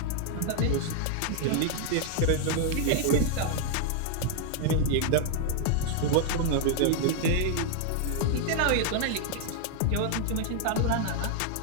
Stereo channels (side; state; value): both; different; correlation 0.00